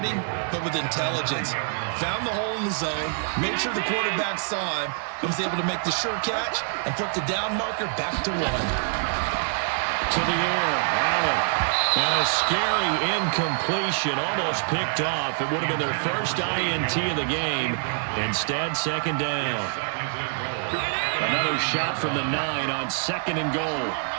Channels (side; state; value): left; silent; digital silence